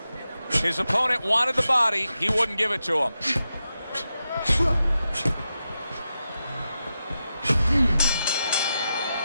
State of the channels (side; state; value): both; inverted; correlation -0.89